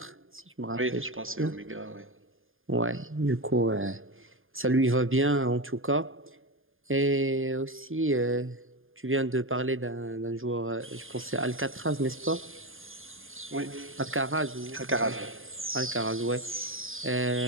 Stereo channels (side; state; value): left; late; 0.59 ms